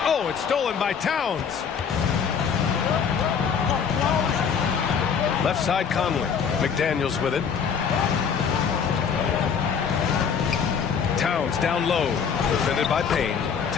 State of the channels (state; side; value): quieter; right; 6.8 dB